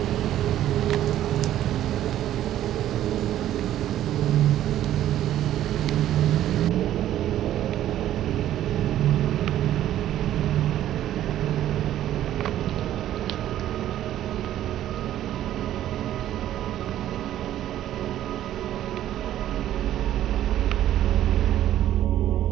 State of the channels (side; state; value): left; quieter; 12.3 dB